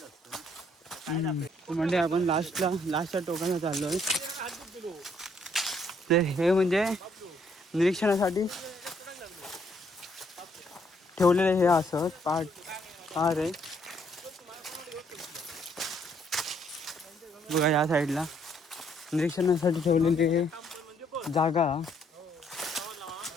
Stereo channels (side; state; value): both; normal; correlation 0.68